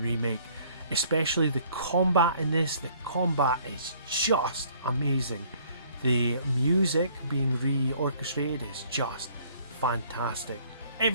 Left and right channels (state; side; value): inverted; both; correlation -0.59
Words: Especially the combat in this, the combat is just amazing. The music being re-orchestrated is just fantastic.